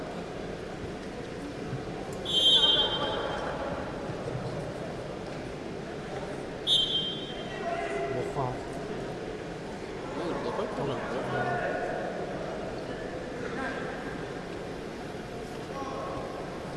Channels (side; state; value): both; identical; correlation 1.00